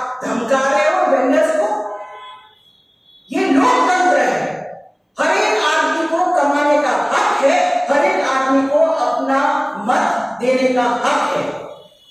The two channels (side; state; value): both; identical; correlation 1.00